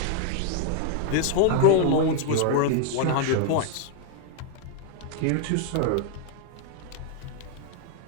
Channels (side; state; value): both; different; correlation 0.00